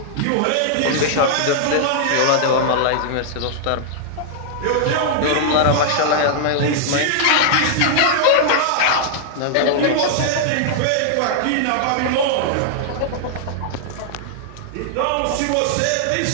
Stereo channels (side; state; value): both; different; correlation -0.01